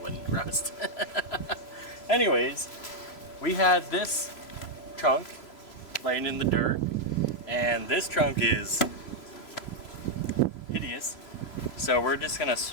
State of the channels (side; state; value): right; late; 3.0 ms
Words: wouldn't rust. Anyways, we had this trunk laying in the dirt. And this trunk is hideous. So we're just gonna